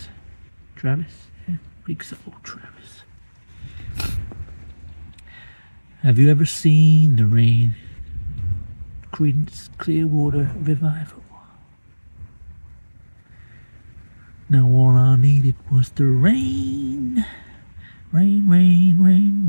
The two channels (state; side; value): inverted; both; correlation -1.00